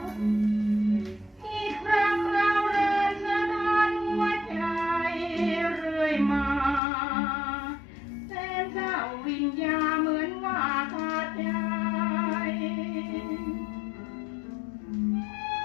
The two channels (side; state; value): right; drops out; at 6.8 s